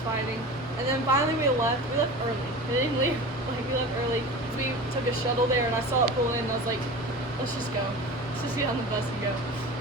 fighting. And then finally we left. We left early. We didn't leave. Like, we left early. We took a shuttle there, and I saw it pull in, and I was like, let's just go. Let's just get on the bus and go.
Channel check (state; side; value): normal; both; correlation 0.33